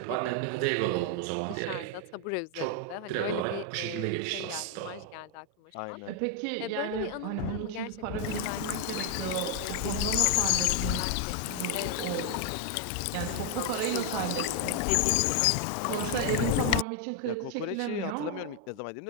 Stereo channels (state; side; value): different; both; correlation 0.00